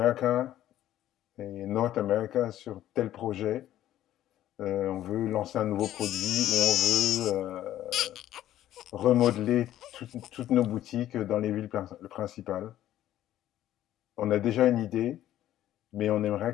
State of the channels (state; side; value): quieter; right; 12.8 dB